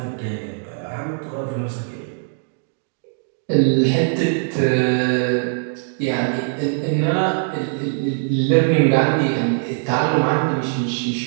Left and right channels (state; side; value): silent; left; digital silence